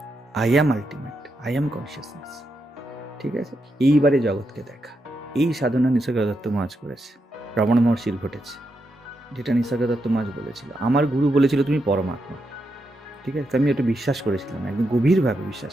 I am ultimate, I am consciousness. ঠিক আছে, এইবারে জগৎকে দেখা। এই সাধনা নিসর্গ দত্ত মহারাজ করেছে, রমণ মহর্ষির ঘটেছে, যেটা নিসর্গ দত্ত মহারাজ বলেছিল। আমার গুরু বলেছিল তুমি পরমাত্মা। ঠিক আছে, আমি ওটা বিশ্বাস করেছিলাম, একদম গভীরভাবে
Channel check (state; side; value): normal; both; correlation 0.84